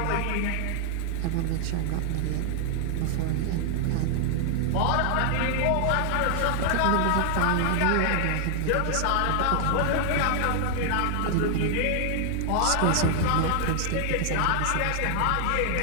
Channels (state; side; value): different; both; correlation 0.00